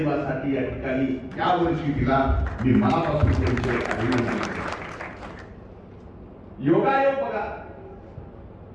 या ठिकाणी या वर्षी दिला. मी मनापासून त्यांचे अभिनंदन करतो. योगायोग बघा,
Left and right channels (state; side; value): identical; both; correlation 1.00